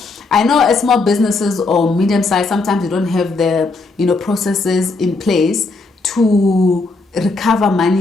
I know as small businesses or medium size, sometimes you don't have the processes in place to recover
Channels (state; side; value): quieter; right; 3.6 dB